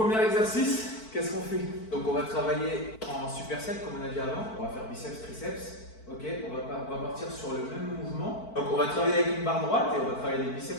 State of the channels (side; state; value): right; late; 4.5 ms